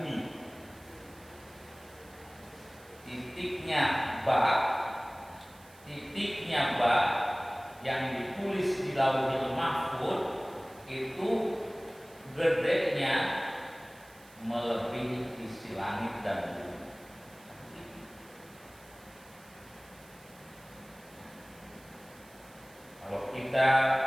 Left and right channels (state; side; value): noise; right; hiss, 24 dB below the sound